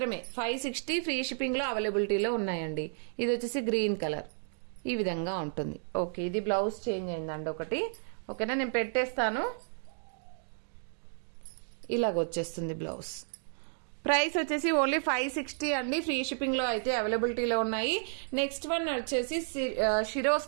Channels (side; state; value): left; silent; 56 dB below the other